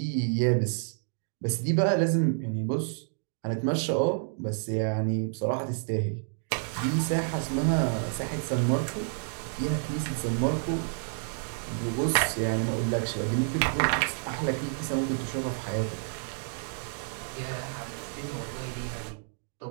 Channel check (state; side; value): silent; left; digital silence